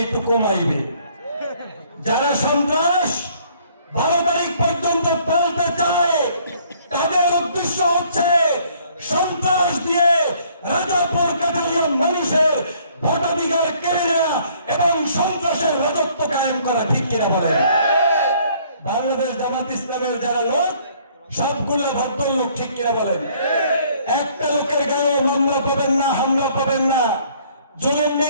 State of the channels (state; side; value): inverted; both; correlation -0.61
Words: একটু কমাইবে। যারা সন্ত্রাস 12 তারিখ পর্যন্ত পালতে চায় তাদের উদ্দেশ্য হচ্ছে সন্ত্রাস দিয়ে রাজাপুর কাঠালিয়া মানুষের ভোটাধিকার কেড়ে নেওয়া এবং সন্ত্রাসের রাজত্ব কায়েম করা, ঠিক কিনা বলেন? বাংলাদেশ জামাত ইসলামের যারা লোক সবগুলো ভদ্রলোক, ঠিক কিনা বলেন? একটা লোকের গায়েও মামলা পাবেন না, হামলা পাবেন না, জুলুম